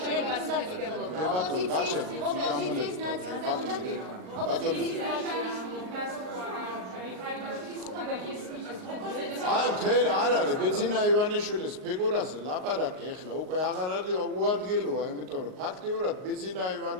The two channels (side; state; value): left; late; 38 ms